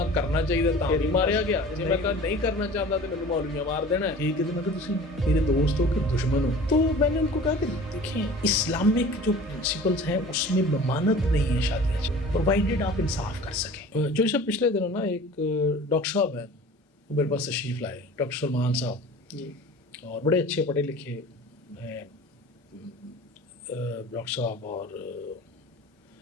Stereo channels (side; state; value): both; normal; correlation 0.42